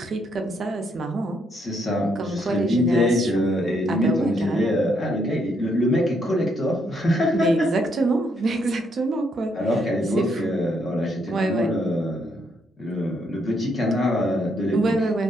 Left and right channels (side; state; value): both; normal; correlation 0.74